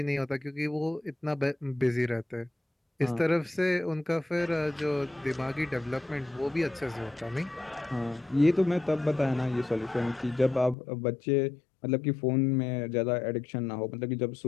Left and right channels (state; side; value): drops out; right; at 10.8 s